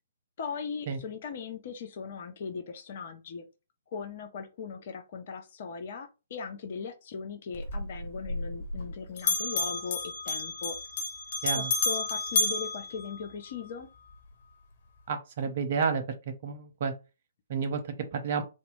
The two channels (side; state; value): both; inverted; correlation -0.58